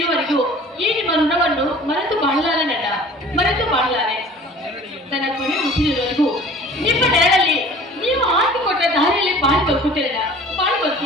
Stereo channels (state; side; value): normal; both; correlation 0.46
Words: ಈ ನಿಮ್ಮ ಋಣವನ್ನು ಮರೆತು ಬಾಳಲಾರೆ ನನ್ನ, ಮರೆತು ಬಾಳಲಾರೆ. ನನ್ನ ಕೊನೆ ಮುಗಿದಿರುವವರೆಗೂ ನಿಮ್ಮ ನೆರಳಲ್ಲಿ ನೀವು ಹಾಕಿಕೊಟ್ಟ ದಾರಿಯಲ್ಲಿ ಬಾಳಿ ಬದುಕುತ್ತೇನೆ, ಬಾಳಿ